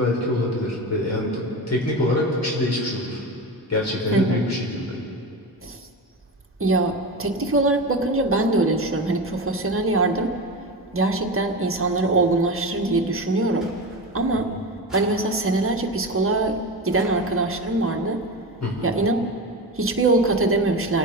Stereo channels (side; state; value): both; normal; correlation 0.23